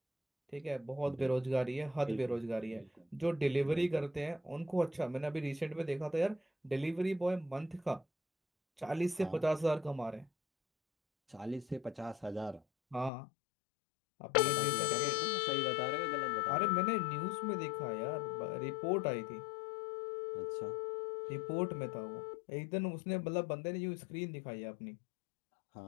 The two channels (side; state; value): right; drops out; at 13.1 s